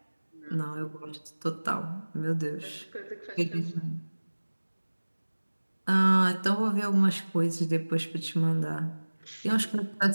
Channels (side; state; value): both; inverted; correlation -1.00